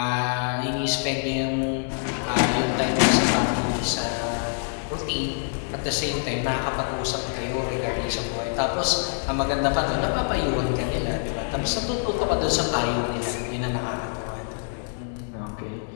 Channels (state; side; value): silent; right; digital silence